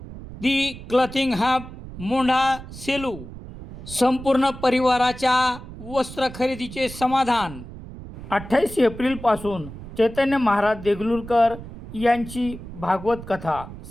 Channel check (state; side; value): noise; right; rumble, 13 dB below the sound